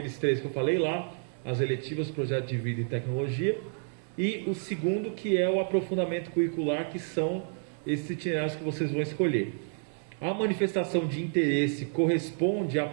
3 que eu falei lá, as eletivas, projeto de vida e tecnologia. E o segundo, que é o aprofundamento curricular, que são esses itinerários que vocês vão escolher. A manifestação de interesse corresponde à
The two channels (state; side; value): silent; left; 58 dB below the other